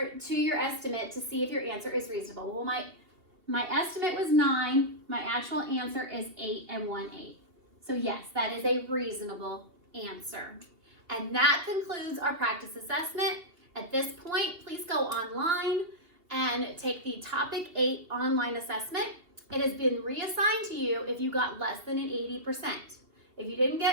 to your estimate to see if your answer is reasonable. Well, my estimate was 9. My actual answer is 8 and 1, 8. So yes, that is a reasonable answer. And that concludes our practice assessment. At this point, please go online and take the Topic 8 online assessment. It has been reassigned to you if you got less than an 80%. If you didn't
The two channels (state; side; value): late; left; 2.6 ms